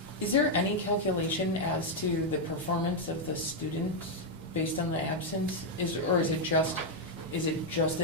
Is there any calculation as to the performance of the students based on the absence? Or is it just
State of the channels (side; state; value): both; normal; correlation -0.01